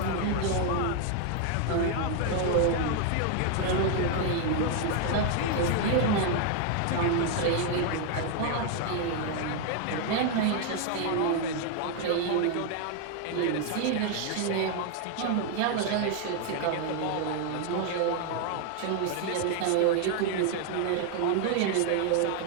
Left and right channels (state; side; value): different; both; correlation 0.00